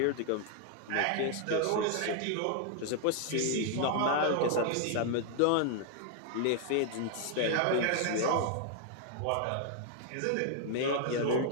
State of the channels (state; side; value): different; both; correlation 0.00